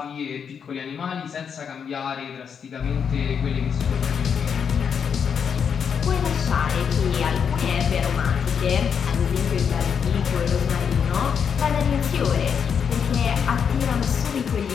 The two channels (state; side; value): quieter; right; 7.1 dB